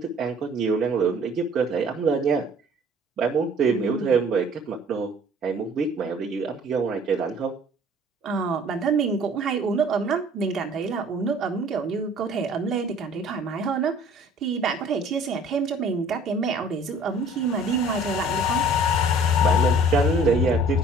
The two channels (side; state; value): both; normal; correlation 0.52